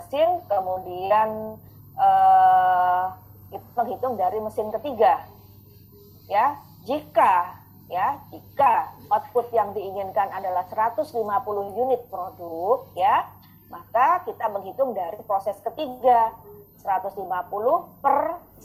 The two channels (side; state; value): both; identical; correlation 1.00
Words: kemudian kita menghitung dari mesin ketiga ya. Jika output yang diinginkan adalah 150 unit produk ya, maka kita menghitung dari proses ketiga 150 per